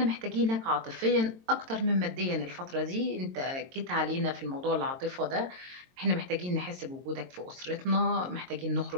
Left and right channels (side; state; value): left; late; 22 ms